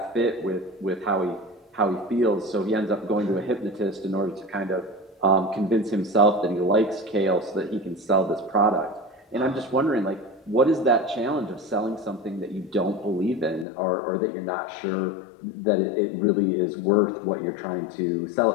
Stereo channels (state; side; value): drops out; right; at 13.7 s